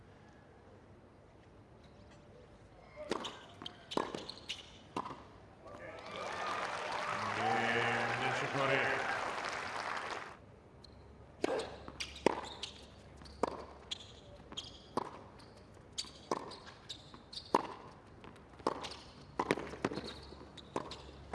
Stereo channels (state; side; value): identical; both; correlation 1.00